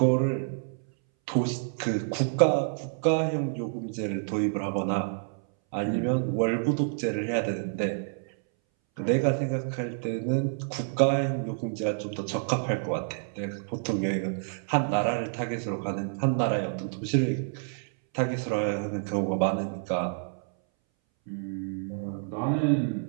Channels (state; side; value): silent; left; 59 dB below the other